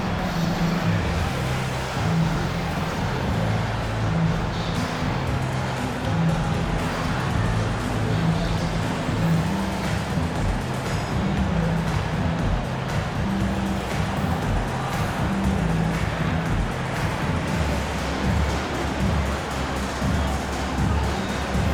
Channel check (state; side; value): identical; both; correlation 1.00